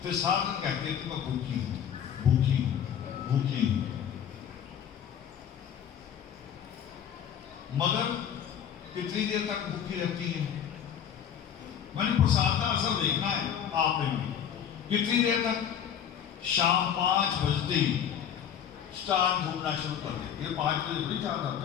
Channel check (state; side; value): quieter; right; 8.9 dB